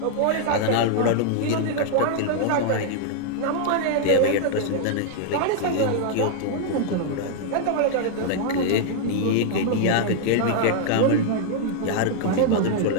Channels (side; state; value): both; different; correlation -0.01